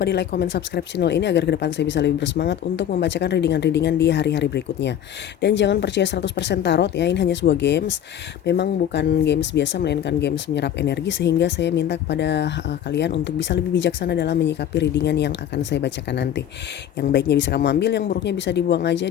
di like, comment, subscribe channel ini agar ke depan saya bisa lebih bersemangat untuk membacakan readingan-readingan di hari-hari berikutnya. Dan jangan percaya 100% tarot ya, ini hanya sebuah games. Memang bukan games biasa melainkan games menyerap energi, sehingga saya minta kepada kalian untuk bisa lebih bijaksana dalam menyikapi readingan yang akan saya bacakan nanti. Yang baiknya bisa kamu ambil, yang buruknya bisa dibuang aja,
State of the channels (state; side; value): quieter; right; 10.3 dB